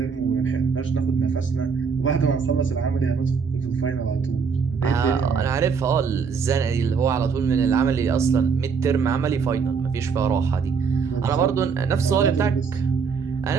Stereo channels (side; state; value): left; quieter; 5.7 dB